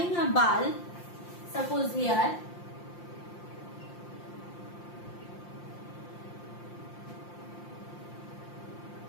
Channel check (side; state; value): right; late; 5.7 ms